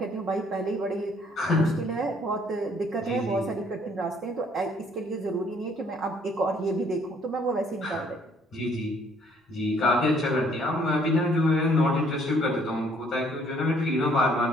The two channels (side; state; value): both; normal; correlation 0.62